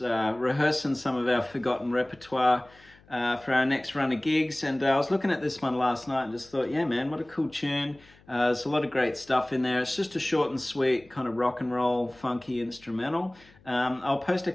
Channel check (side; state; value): left; noise; hum, 28 dB below the sound